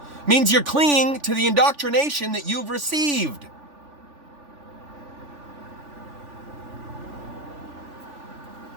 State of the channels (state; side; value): late; left; 3.4 ms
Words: Means you're clinging to the indoctrination that you've received.